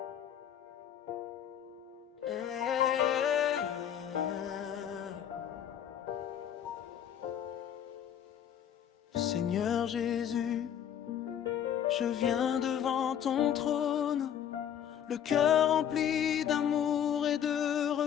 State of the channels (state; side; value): quieter; right; 9.5 dB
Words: Seigneur Jésus, je viens devant ton trône, le cœur rempli d'amour et de